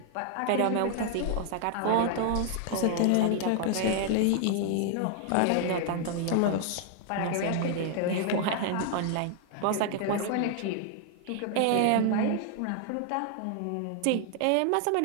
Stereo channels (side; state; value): both; different; correlation 0.00